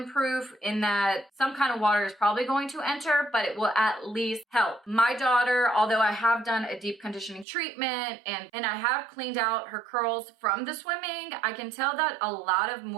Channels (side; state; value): left; drops out; at 7.5 s